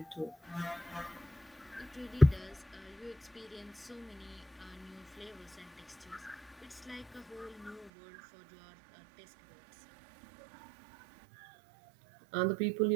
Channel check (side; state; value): left; drops out; at 7.9 s